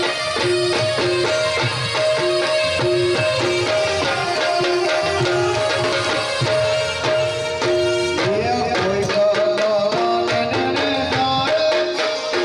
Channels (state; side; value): identical; both; correlation 1.00